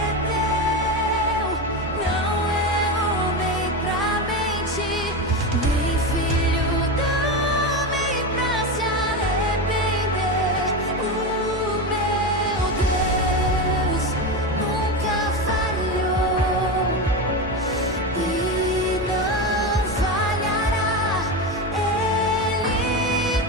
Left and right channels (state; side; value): normal; both; correlation 0.18